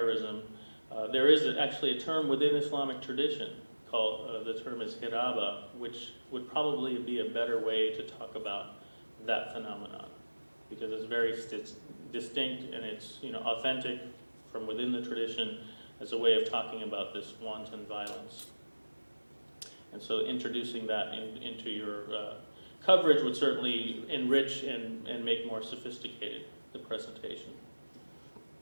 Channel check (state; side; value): inverted; both; correlation -1.00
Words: there is actually a term within Islamic tradition called, the term is hiraba, which would probably be a better way to talk about that phenomenon because it's very distinct and it's authentic from within the tradition as a way of talking about this wanton violence. And so introducing that into your coverage would certainly enrich and make more sophisticated the presentation.